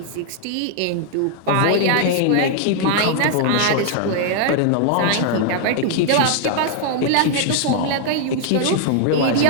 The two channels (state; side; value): different; both; correlation 0.00